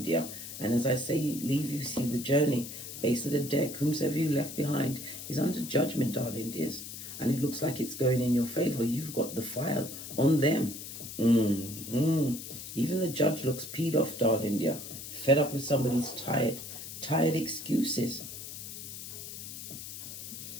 dear. And as I say, leave, you see the journey. Base of the deck, whomsoever you left behind is under judgment, darling dears. And it looks like it's going in your favor. You've got the file on them. Even the judge looks peed off, darling dear. Fed up with somebody's tired excuses.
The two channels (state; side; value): noise; left; hiss, 10 dB below the sound